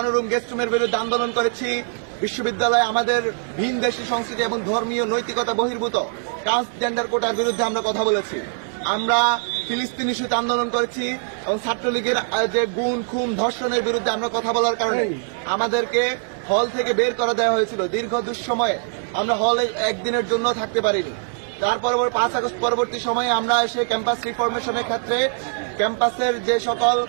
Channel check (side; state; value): left; silent; digital silence